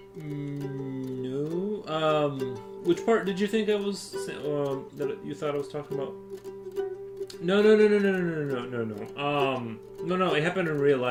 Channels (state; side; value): identical; both; correlation 1.00